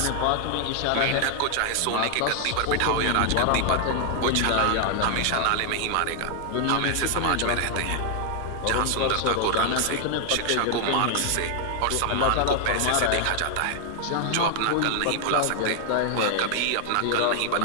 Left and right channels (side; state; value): both; different; correlation 0.00